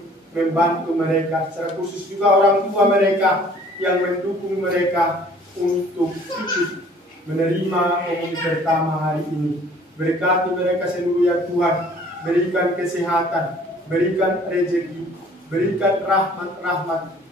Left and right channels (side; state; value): both; normal; correlation 0.54